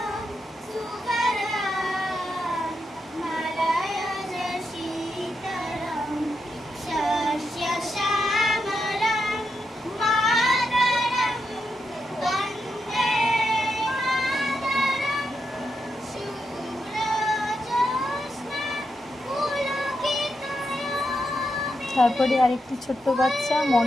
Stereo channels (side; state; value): both; normal; correlation 0.84